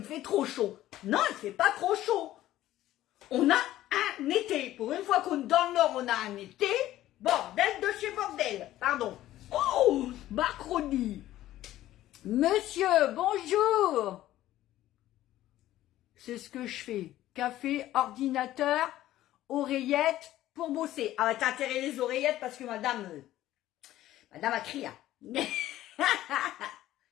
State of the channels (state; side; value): quieter; right; 14.3 dB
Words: fait trop chaud. Non, il fait pas trop chaud. On a un été. Pour une fois qu'on est dans le Nord, on a un été. Bordel de chez bordel. Pardon. Oh, Macronie. Monsieur, bonjour. C'est ce que je fais. Café, ordinateur, oreillettes pour bosser. Ah, t'as intérêt les oreillettes parce que madame a crié.